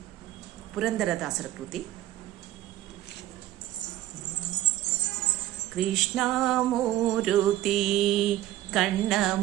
ಪುರಂದರದಾಸರ ಕೃತಿ. ಕೃಷ್ಣಮೂರುತಿ ಕಣ್ಣ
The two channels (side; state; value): left; quieter; 14.2 dB